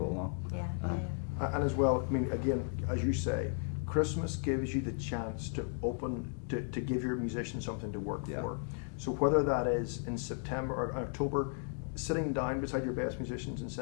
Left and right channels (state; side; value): silent; right; 54 dB below the other